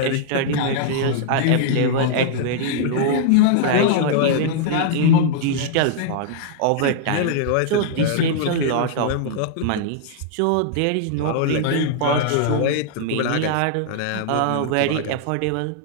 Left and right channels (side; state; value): both; different; correlation -0.01